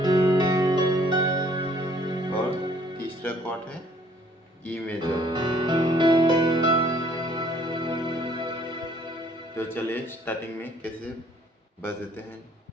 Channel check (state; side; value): normal; both; correlation 0.60